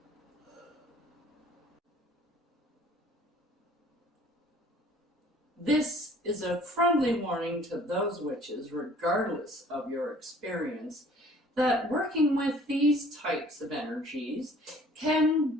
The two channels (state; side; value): normal; both; correlation 0.53